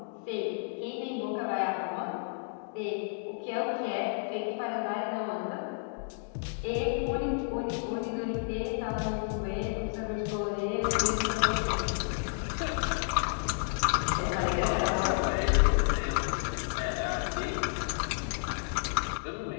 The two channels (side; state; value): right; silent; digital silence